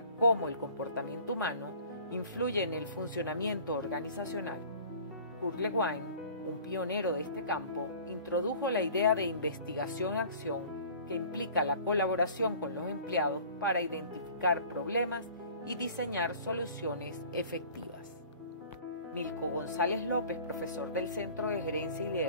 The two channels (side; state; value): both; inverted; correlation -0.47